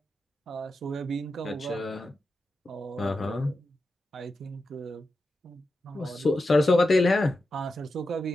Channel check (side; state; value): both; normal; correlation 0.90